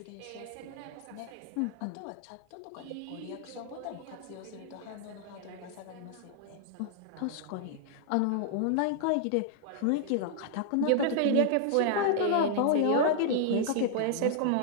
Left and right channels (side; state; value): both; different; correlation -0.01